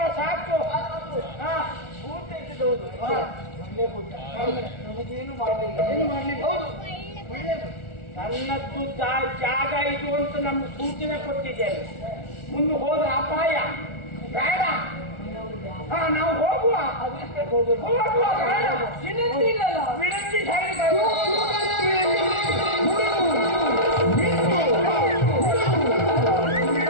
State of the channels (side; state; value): right; late; 1.4 ms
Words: ಸಾಕು. ಊಟ ಇದ್ದೌದು ನಮಗೇನು ಮಾಡಲಿಲ್ಲ. ಏನು ಮಾಡಲಿಲ್ಲ. ಹೌದು, ನನ್ನದ್ದು ಜಾಗ ಇದು ಅಂತ ನಮ್ಗೆ ಸೂಚನೆ ಕೊಟ್ಟಿದ್ದೇವೆ. ಮುಂದೆ ಹೋದ್ರೆ ಅಪಾಯ ಬೇಡ. ನಾವು ಹೋಗುವ. ವಿನಂತಿ ಇಲ್ಲಲ್ಲ. ವಿನಂತಿ